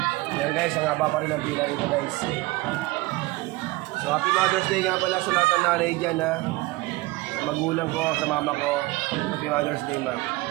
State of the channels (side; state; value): left; quieter; 21.1 dB